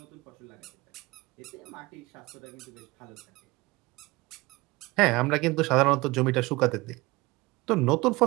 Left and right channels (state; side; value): quieter; left; 21.9 dB